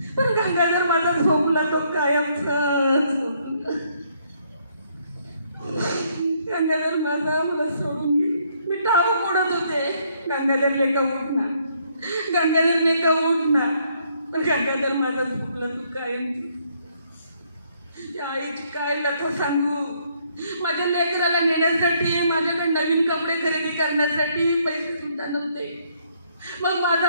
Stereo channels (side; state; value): both; inverted; correlation -0.69